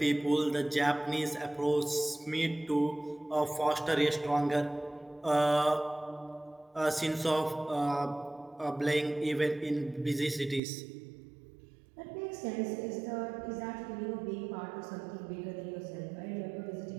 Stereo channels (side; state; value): left; drops out; at 10.6 s